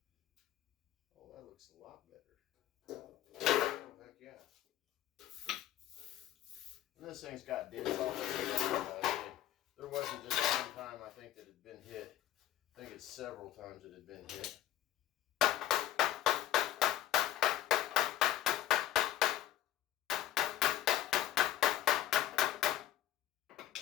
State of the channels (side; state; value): right; quieter; 12.8 dB